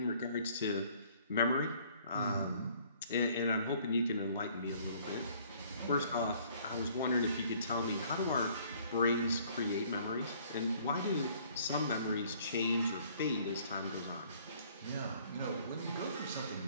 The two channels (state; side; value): inverted; both; correlation -0.59